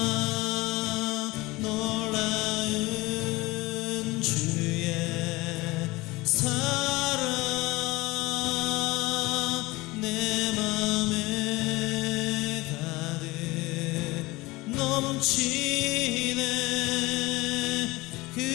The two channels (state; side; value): quieter; right; 21.4 dB